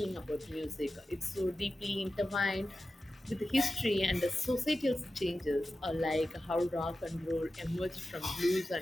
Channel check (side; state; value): both; normal; correlation 0.93